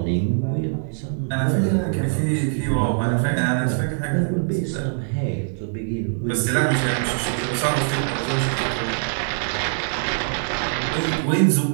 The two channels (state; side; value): silent; left; digital silence